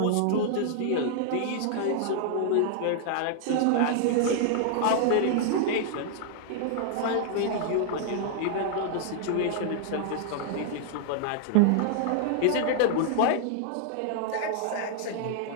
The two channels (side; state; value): both; different; correlation -0.01